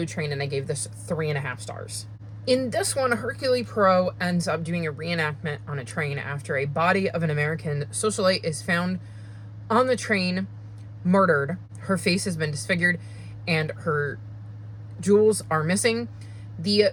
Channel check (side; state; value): both; identical; correlation 1.00